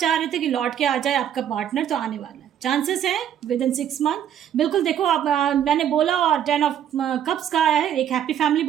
रहे थे कि लौट के आ जाए आपका पार्टनर, तो आने वाला है, चांसेस हैं विद इन 6 मंथ। बिल्कुल देखो आप, मैंने बोला, और 10 ऑफ कप्स का आया है, एक हैप्पी फैमिली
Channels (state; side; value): quieter; left; 9.7 dB